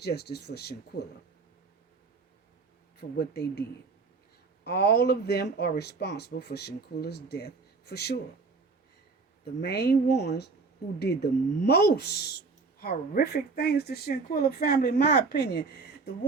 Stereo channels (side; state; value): left; quieter; 4.3 dB